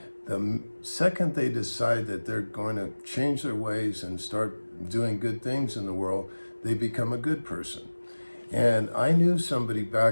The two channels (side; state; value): both; inverted; correlation -1.00